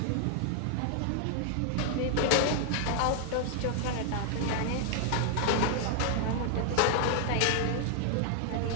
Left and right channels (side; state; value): both; different; correlation 0.00